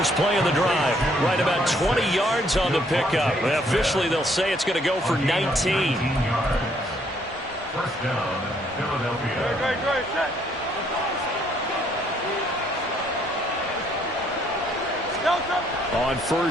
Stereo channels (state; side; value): normal; both; correlation 0.67